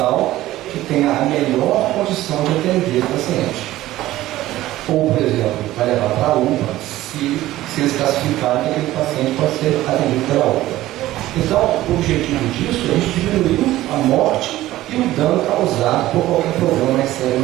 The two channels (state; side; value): quieter; left; 15.6 dB